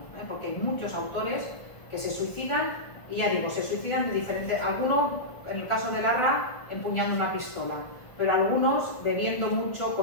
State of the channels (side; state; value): right; late; 1.5 ms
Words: Porque hay muchos autores que se suicidan, y ya digo, se suicidan de diferentes, algunos, en el caso de Larra, empuñando una pistola, pero algunos bebiendo mucho,